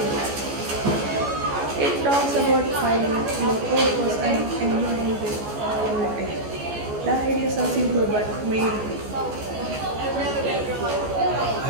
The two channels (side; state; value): left; late; 14 ms